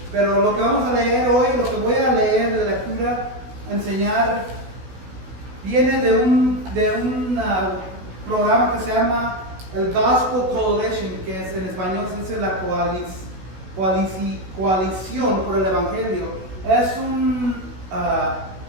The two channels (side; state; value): left; late; 16 ms